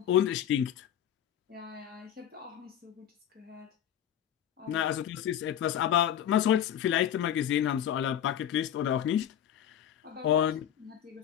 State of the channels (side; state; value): right; quieter; 10.2 dB